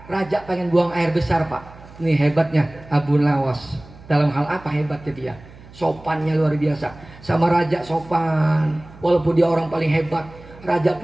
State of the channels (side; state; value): right; noise; hum, 21 dB below the sound